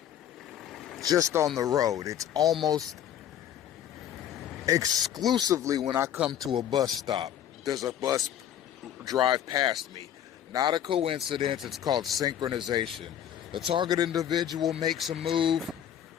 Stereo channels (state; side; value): quieter; right; 10.3 dB